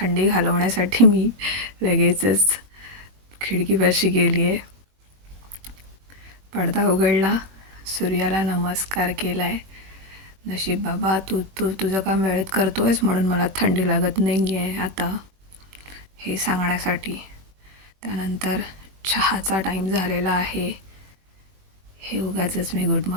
घालवण्यासाठी मी लगेचच खिडकीपाशी गेली आहे. पडदा उघडला, सूर्याला नमस्कार केला आहे. नशीब बाबा, तुझं काम वेळेत करतो आहेस म्हणून मला थंडी लागत नाही आहे आता, हे सांगण्यासाठी. त्यानंतर चहाचा टाईम झालेला आहे. हे उगाचच मी गुड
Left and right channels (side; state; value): left; late; 21 ms